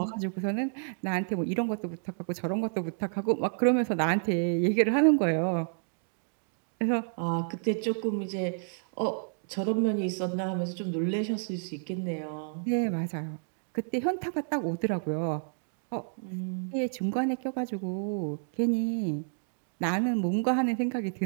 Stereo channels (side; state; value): left; silent; digital silence